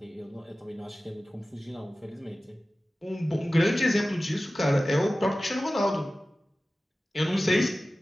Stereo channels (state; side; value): normal; both; correlation 0.96